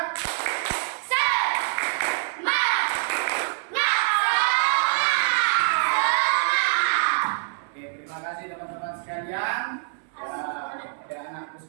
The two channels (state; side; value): silent; left; 62 dB below the other